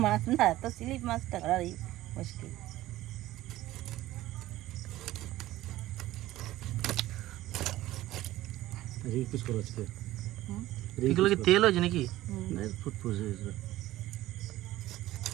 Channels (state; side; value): quieter; left; 15.8 dB